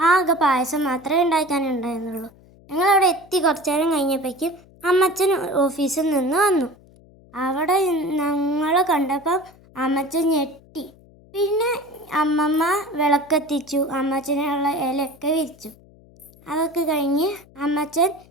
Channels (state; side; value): noise; left; hum, 26 dB below the sound